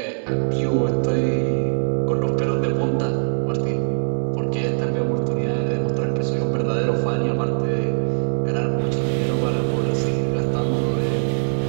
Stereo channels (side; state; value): left; silent; 64 dB below the other